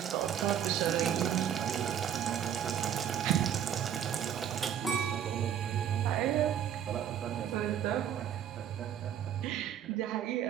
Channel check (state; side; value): quieter; left; 9.5 dB